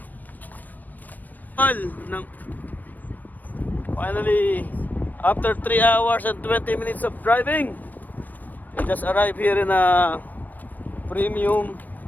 Finally, after 3 hours and 20 minutes of driving, we just arrived here in a premium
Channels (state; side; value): late; right; 0.086 ms